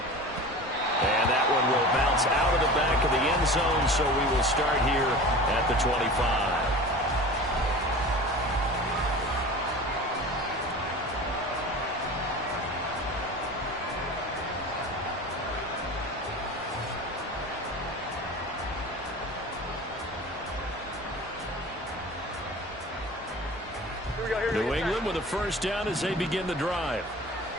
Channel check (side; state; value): both; normal; correlation 0.36